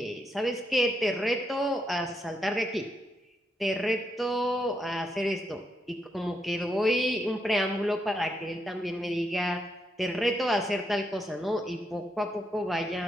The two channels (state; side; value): normal; both; correlation 0.80